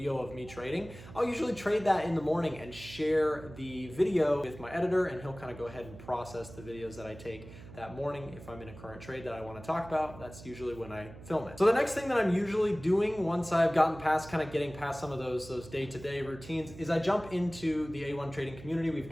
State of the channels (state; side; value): noise; right; hum, 16 dB below the sound